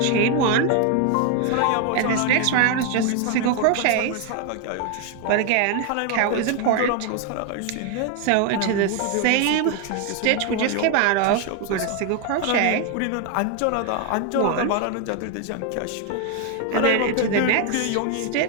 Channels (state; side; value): different; both; correlation 0.01